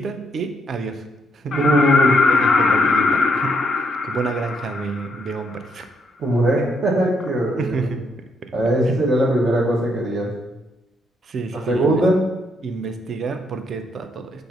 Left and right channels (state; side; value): normal; both; correlation 0.74